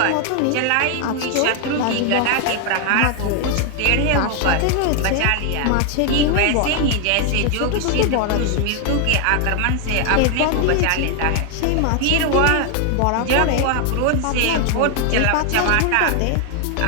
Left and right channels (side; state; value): both; different; correlation 0.00